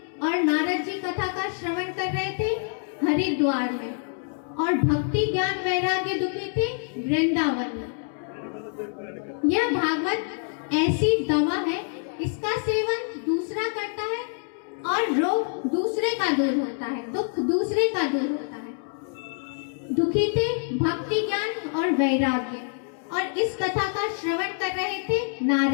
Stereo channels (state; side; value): silent; right; 55 dB below the other